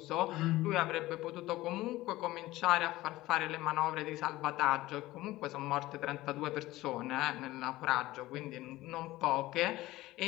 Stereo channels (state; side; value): quieter; right; 17.5 dB